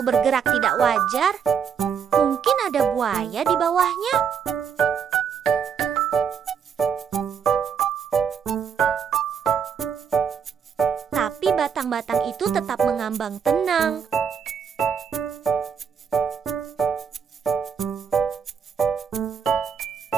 bergerak tidak wajar, mungkin ada buaya di bawahnya. Tapi batang-batang itu tetap mengambang tenang.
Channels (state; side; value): quieter; left; 7.1 dB